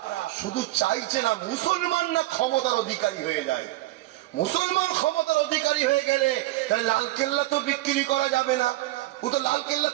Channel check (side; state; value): left; quieter; 17.9 dB